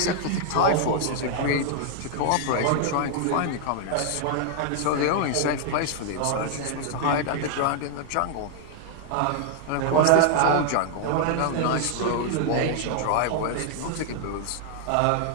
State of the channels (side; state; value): both; different; correlation 0.00